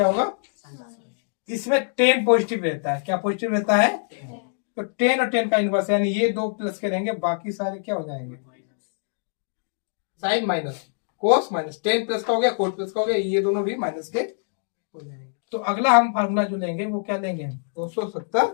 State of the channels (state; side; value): silent; right; digital silence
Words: होगा, इसमें टेन पॉजिटिव रहता है, क्या पॉजिटिव रहता है, तो टेन और टेन का इनवर्स, यानी ये दो प्लस के रहेंगे, बाकी सारे क्या हो जाएंगे sine minus cos minus, tan plus का हो गया कोट प्लस का हो गया, ये दोनों भी माइनस के हो जाएंगे। तो अगला हम फार्मूला जो लेंगे वो क्या लेंगे